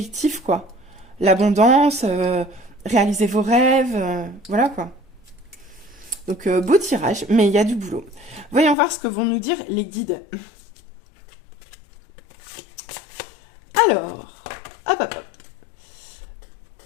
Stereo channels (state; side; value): drops out; right; at 8.8 s